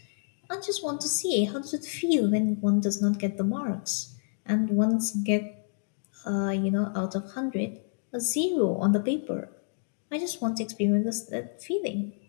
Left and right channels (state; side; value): silent; right; digital silence